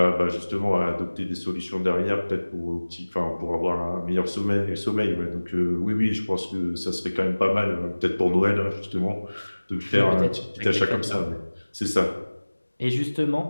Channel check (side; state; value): both; inverted; correlation -1.00